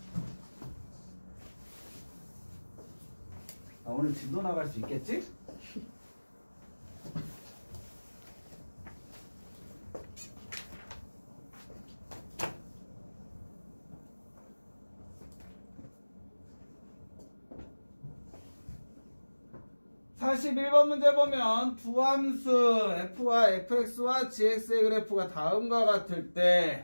오늘 진도 나갈 수 있겠지? (41번) 문제 보면 두 함수 f와 fx와 gx의 그래프가 다음과 같을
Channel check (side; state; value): both; inverted; correlation -1.00